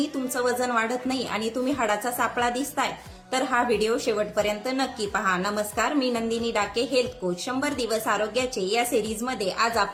तुमचं वजन वाढत नाही आणि तुम्ही हाडाचा सापळा दिसताय, तर हा व्हिडिओ शेवटपर्यंत नक्की पहा. नमस्कार, मी नंदिनी डाके, हेल्थ कोच. 100 दिवस आरोग्याचे या सिरीजमध्ये आज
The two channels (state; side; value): identical; both; correlation 1.00